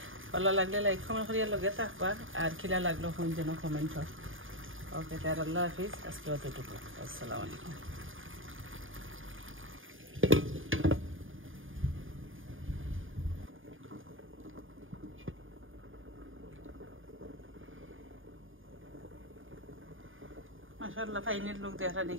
ভালো লাগলে লাইক কমেন্ট করিয়া লগে থাকবা, আর খিলা লাগলো কোন যেন কমেন্ট হয়। ওকে, তার আল্লাহ হাফিজ, আজকে অতটুকু। আসসালামু আলাইকুম। মাশাআল্লাহ ফাইনের লোক দেখা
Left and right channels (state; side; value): late; left; 0.58 ms